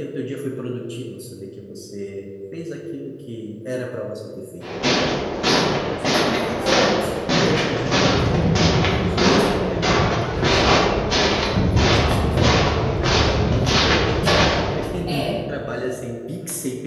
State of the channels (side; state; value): both; identical; correlation 1.00